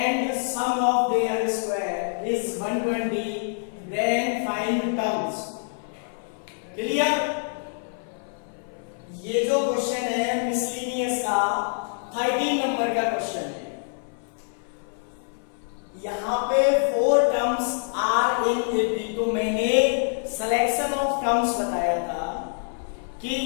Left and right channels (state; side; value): silent; right; 55 dB below the other